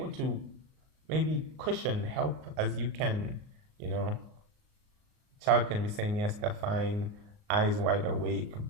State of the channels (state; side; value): late; left; 38 ms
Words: to maybe cushion, help as you can. Child can be saying yes, they're fine, eyes wide awake,